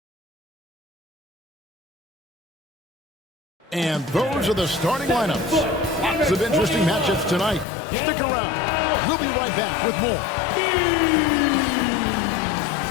And those are the starting lineups. Lots of interesting matchups tonight. Stick around. We'll be right back with more.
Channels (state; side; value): drops out; right; at 7.7 s